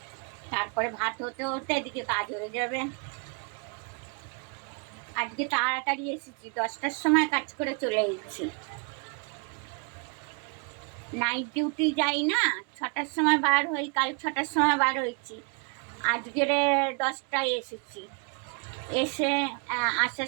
তারপরে ভাত হতে হতে এদিকে কাজ হয়ে যাবে। আজকে তাড়াতাড়ি এসেছি, 10টার সময় কাজ করে চলে এসেছি। নাইট ডিউটি যাই না, 6টার সময় বার হই, কাল 6টার সময় বার হয়েছি, আজকের 10টায় এসেছি। এসে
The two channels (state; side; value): quieter; left; 36.1 dB